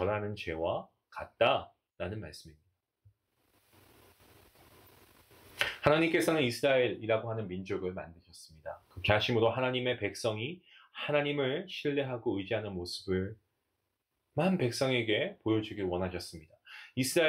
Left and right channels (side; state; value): both; identical; correlation 1.00